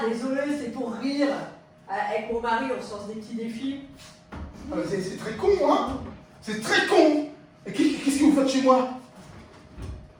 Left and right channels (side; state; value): both; identical; correlation 1.00